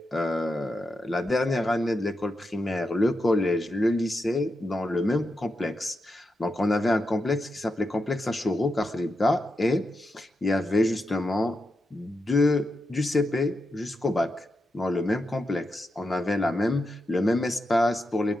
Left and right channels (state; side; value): normal; both; correlation 0.87